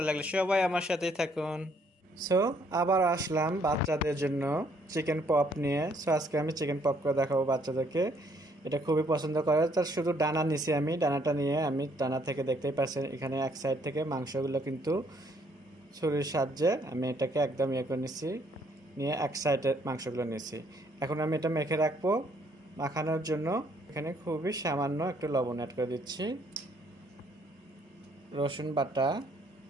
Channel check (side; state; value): both; normal; correlation 0.67